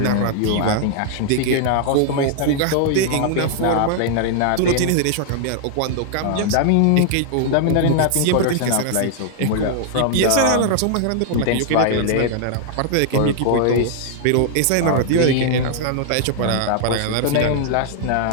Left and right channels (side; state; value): both; different; correlation 0.00